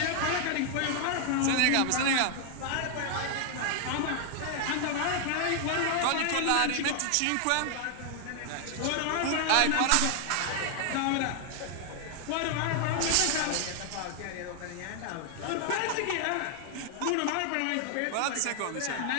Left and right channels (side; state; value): both; different; correlation 0.00